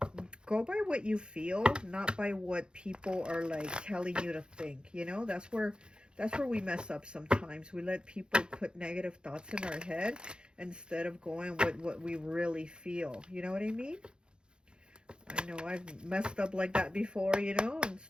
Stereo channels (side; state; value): left; late; 0.050 ms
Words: Go by what you feel, not by what people are like telling you to think. You know, that's where we mess up sometimes. We let people put negative thoughts in our head instead of going with what we really feel. You know what I mean? I know I've messed up like that before, you know.